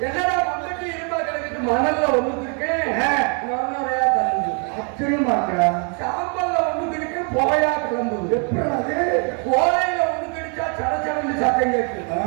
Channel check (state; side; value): quieter; left; 38.1 dB